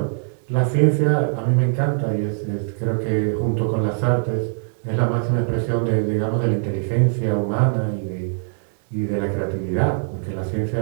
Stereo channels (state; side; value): silent; left; 61 dB below the other